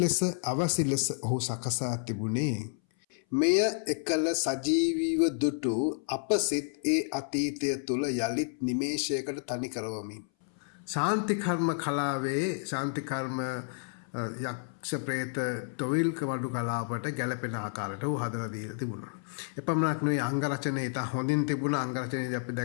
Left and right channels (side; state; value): right; silent; 57 dB below the other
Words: අවසි ලෙස ඔහු සකසා තිබුණේ මෙය එකල සජීවීව දුටු අප සිත් ඒ අතීතය තුළ යළිත් නිමේෂයකට තනි කරවමින්. ශාන්තිකර්ම කලාවේ ශාන්තිකර්ම යක්ෂ ප්‍රේත තොවිල්ක වඩු කලාවට ගැලපෙන ආකාරයට ඔහු හදලා දීලා තිබුණා. එපමණක් නෙවෙයි අංගරචනය ඉතා හොඳින් තිබුණා. අංගරචනයේදී අපි